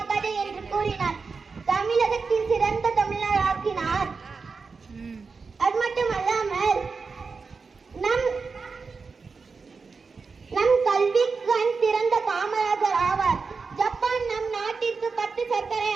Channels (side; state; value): left; quieter; 4.8 dB